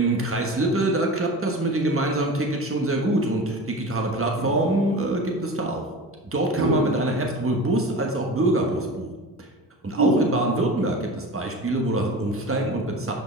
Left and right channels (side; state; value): both; normal; correlation 0.33